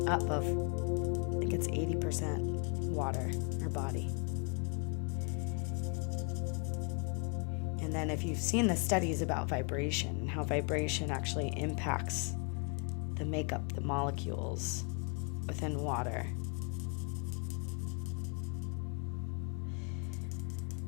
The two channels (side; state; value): right; quieter; 36.9 dB